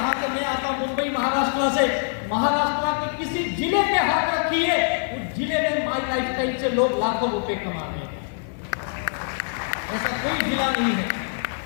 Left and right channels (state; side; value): silent; right; 63 dB below the other